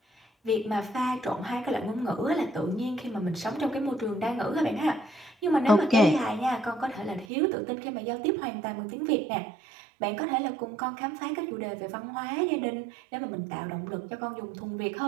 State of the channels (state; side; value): drops out; left; at 7.2 s